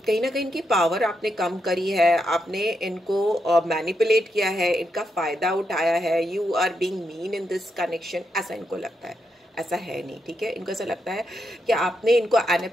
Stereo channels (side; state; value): both; normal; correlation 0.83